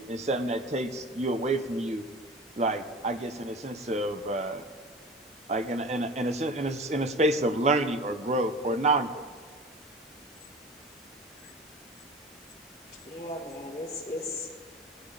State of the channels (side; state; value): both; normal; correlation 0.38